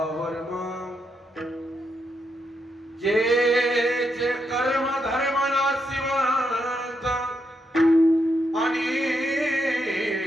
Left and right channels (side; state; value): both; normal; correlation 0.82